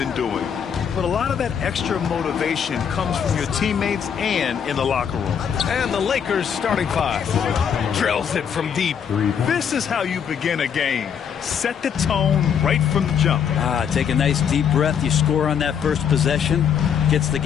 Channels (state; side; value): quieter; right; 7.7 dB